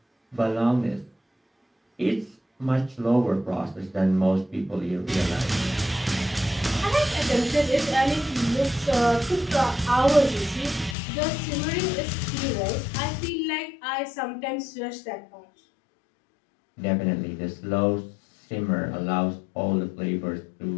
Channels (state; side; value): drops out; right; at 11.0 s